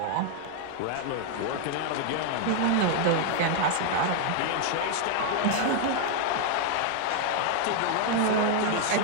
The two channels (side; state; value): both; different; correlation 0.00